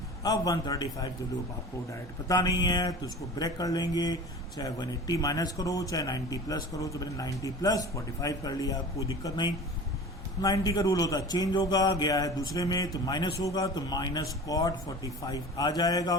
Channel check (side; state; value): both; normal; correlation 0.38